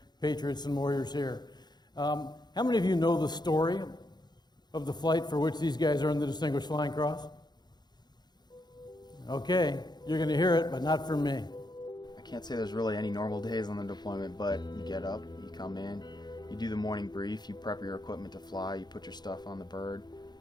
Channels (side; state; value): right; late; 0.20 ms